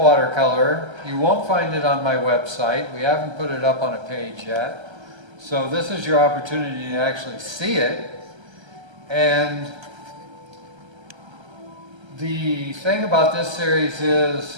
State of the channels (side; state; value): left; late; 1.3 ms